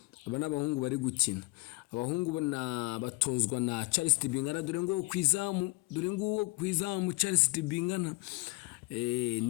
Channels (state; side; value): quieter; right; 24.4 dB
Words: Aba n'abahungu bari gukina. Abahungu batozwa na Charles Tibingana. Dore ngo kwizamu Charles Tibingana